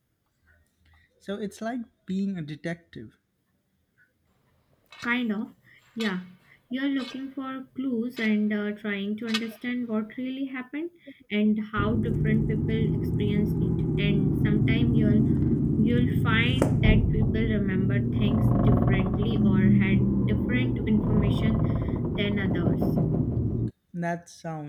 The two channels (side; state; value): both; identical; correlation 1.00